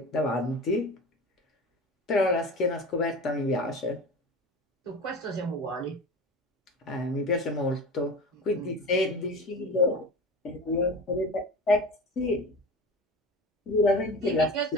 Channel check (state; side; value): normal; both; correlation 0.33